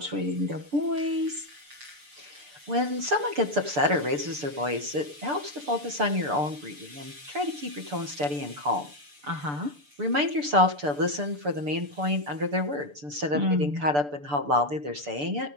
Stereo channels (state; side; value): late; left; 6.8 ms